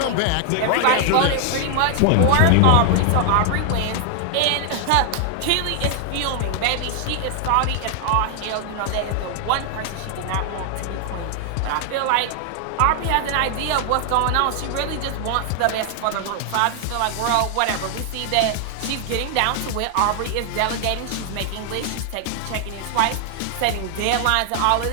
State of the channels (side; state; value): both; different; correlation 0.00